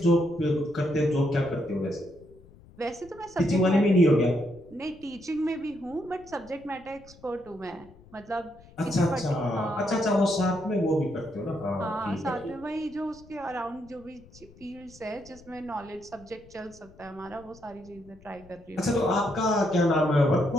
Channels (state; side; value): noise; left; rumble, 24 dB below the sound